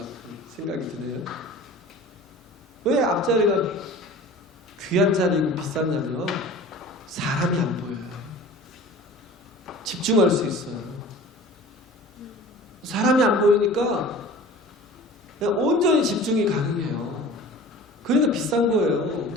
생각이 드네요. 왜 앞자리가 귀한 자리고 비쌌냐면 사람이 안 보여요. 집중할 수 있어요. 사람이 안 보이니까 그냥 온전히 집중이 가능해요. 그러니까 비싼 거예요.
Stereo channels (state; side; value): normal; both; correlation 0.42